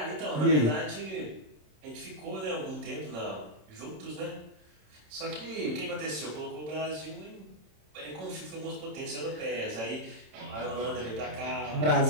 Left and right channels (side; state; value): left; late; 27 ms